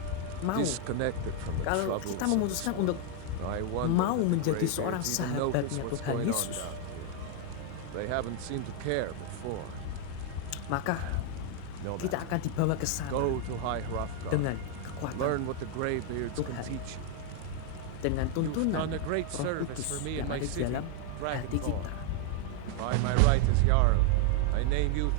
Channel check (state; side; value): different; both; correlation 0.00